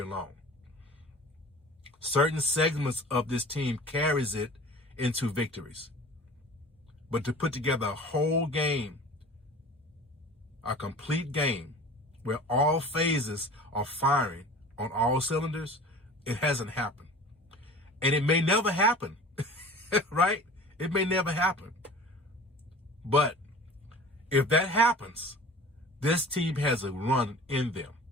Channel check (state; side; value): normal; both; correlation 0.41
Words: long. Certain segments of this team carries it into victories. But to put together a whole game, a complete game, where all phases are firing on all cylinders, it hasn't happened. And it may never happen, right? It may never happen. But if that happens, this team has a run in them.